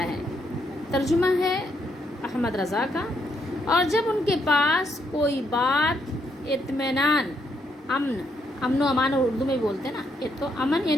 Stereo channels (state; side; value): normal; both; correlation 0.75